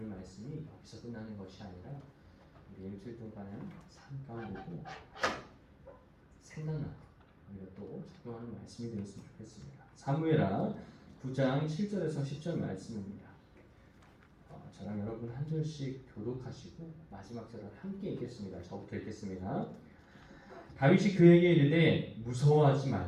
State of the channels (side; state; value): both; identical; correlation 1.00